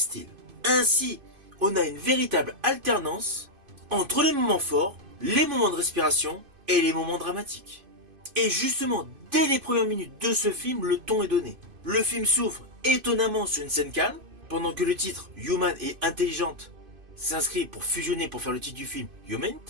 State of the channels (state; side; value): late; left; 2.5 ms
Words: Ainsi, on a une véritable alternance entre les moments forts, les moments de respiration et les moments dramatiques. Et justement, dès les premières minutes de ce film, le ton est donné. Le film s'ouvre étonnamment sur une scène calme, pendant que le titre Human et Intelligente s'inscrit pour fusionner pour faire le titre du film Yomen.